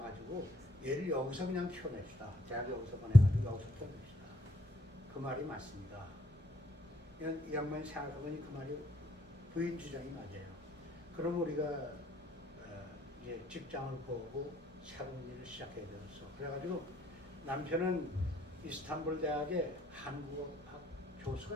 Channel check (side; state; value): both; normal; correlation 0.69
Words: 얘를 여기서 그냥 키워냅시다. 대학 여기서 보내가지고 여기서 키워냅시다. 그 말이 맞습니다. 이 양반이 생각해보니 그 말이 부인 주장이 맞아요. 그럼 우리가 이제 직장을 구하고 새로운 일을 시작해야 되겠어. 그래가지고 남편은 이스탄불 대학의 한국어학